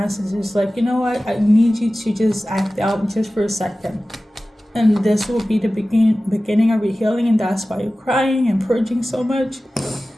like, you know what? I need you to just act out just for a second. And this will be the beginning of your healing, and that's why you're crying and purging so much.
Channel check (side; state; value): both; normal; correlation 0.96